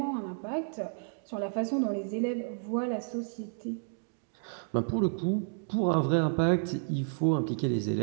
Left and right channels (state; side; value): silent; left; digital silence